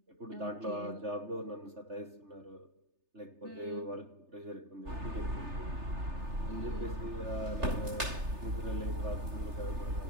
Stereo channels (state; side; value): late; left; 3.3 ms